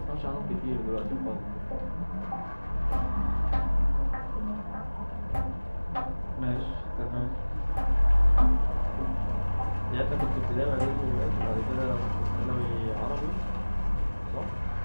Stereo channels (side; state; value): both; inverted; correlation -1.00